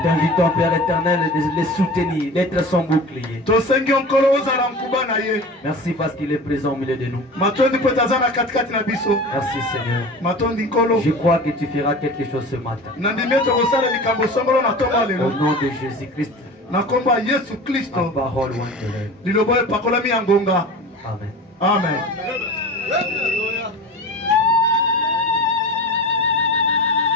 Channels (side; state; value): both; normal; correlation 0.35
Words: t'invitons, Père éternel, de les soutenir, d'être son bouclier. Merci parce qu'il est présent au milieu de nous. Merci, Seigneur. Je crois que tu feras quelque chose ce matin. Au nom de Jésus-Christ. La parole Amen. Amen.